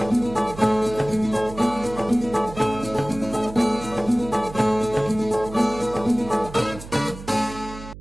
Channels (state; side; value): noise; right; hum, 14 dB below the sound